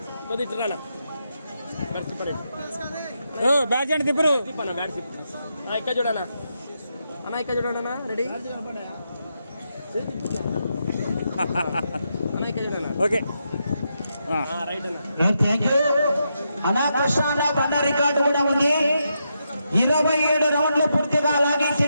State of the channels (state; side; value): inverted; both; correlation -0.83